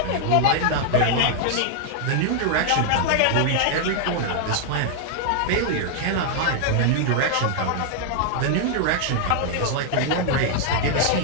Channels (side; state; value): both; different; correlation 0.00